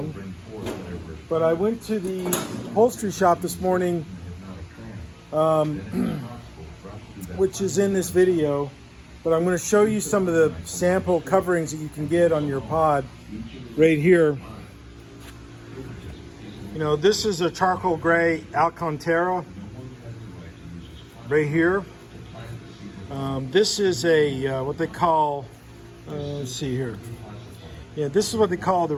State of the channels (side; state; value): both; identical; correlation 1.00